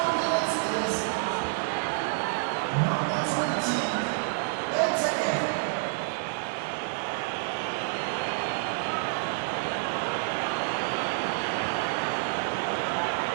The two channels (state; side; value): silent; left; digital silence